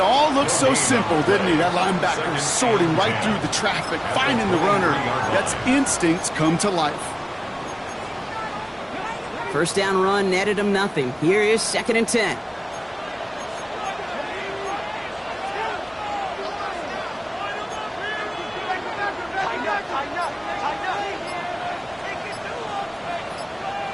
all look so simple, didn't he? That linebacker sorting right through the traffic, finding the runner. That's instincts come to life. First down run netted him nothing. Here is second and 10.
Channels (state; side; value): identical; both; correlation 1.00